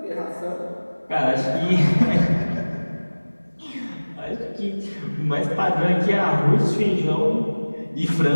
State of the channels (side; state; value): both; inverted; correlation -1.00